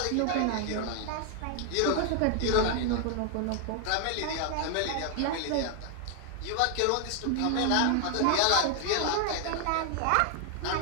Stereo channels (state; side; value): different; both; correlation 0.00